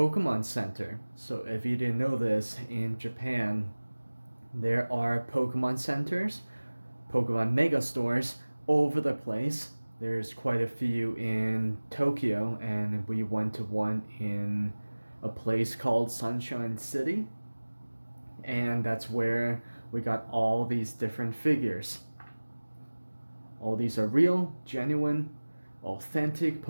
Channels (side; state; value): both; inverted; correlation -1.00